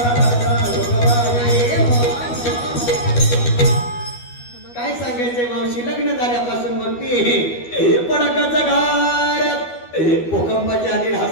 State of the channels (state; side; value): late; right; 12 ms